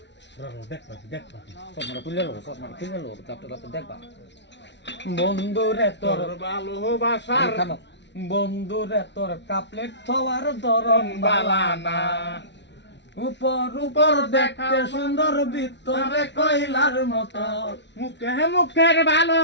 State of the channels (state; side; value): late; right; 0.51 ms